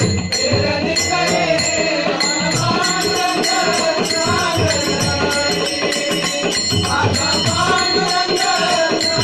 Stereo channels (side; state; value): both; identical; correlation 1.00